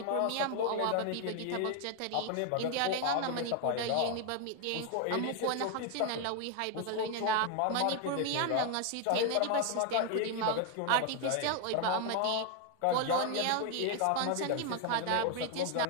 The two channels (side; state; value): both; different; correlation 0.01